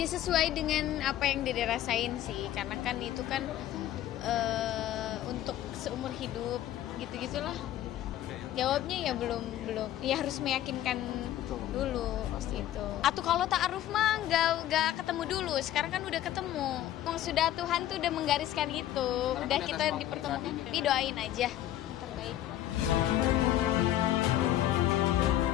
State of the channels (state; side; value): quieter; right; 12.8 dB